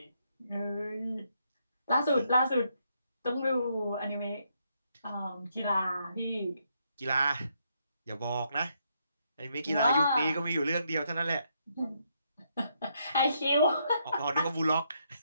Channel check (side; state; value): both; inverted; correlation -0.76